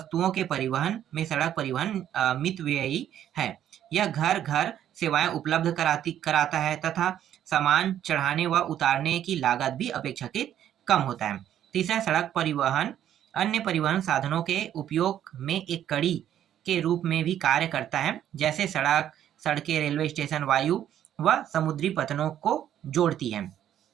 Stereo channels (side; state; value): left; quieter; 10.8 dB